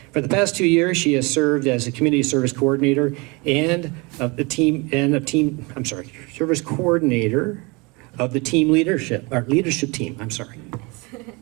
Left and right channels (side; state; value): left; quieter; 27.4 dB